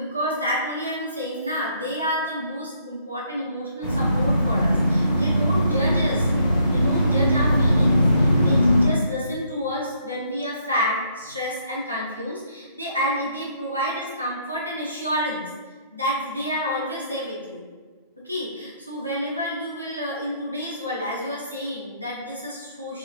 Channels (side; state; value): both; inverted; correlation -0.68